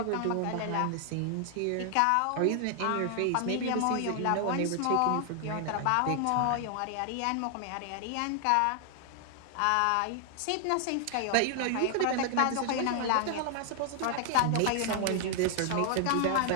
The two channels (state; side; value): different; both; correlation 0.00